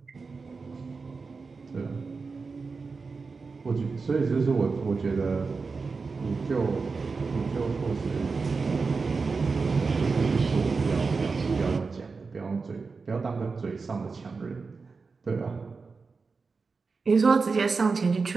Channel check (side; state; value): left; quieter; 4.5 dB